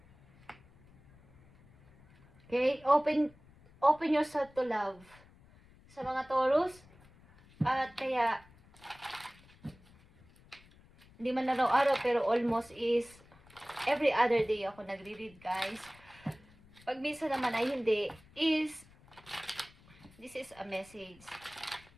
Okay? Open yourself to love. Sa mga Taurus. At kaya, hindi man araw-araw, pero almost is every other day ako nagre-read, guys. Pag minsan naman ay hindi, this is a message.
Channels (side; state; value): left; noise; rumble, 26 dB below the sound